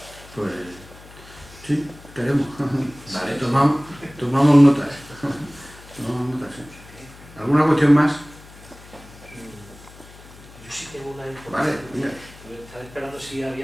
Pues sí, queremos. Vale. Tomamos notas. Tomamos notas, sí. ¿Alguna cuestión más? Yo sí tengo una información. Vale, mira. Estaba esperando si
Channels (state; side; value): noise; left; hum, 20 dB below the sound